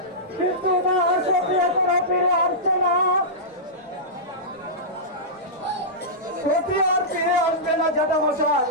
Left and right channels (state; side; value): normal; both; correlation -0.15